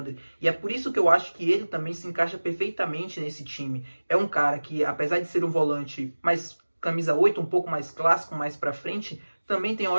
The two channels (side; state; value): both; inverted; correlation -1.00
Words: E é por isso que eu acho que ele também se encaixa perfeitamente nesse time. É um cara que, apesar de ser um volante mais camisa 8, um pouco mais clássico, mais para frente, também tem